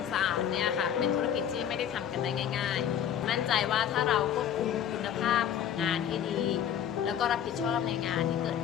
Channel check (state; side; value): quieter; right; 9.5 dB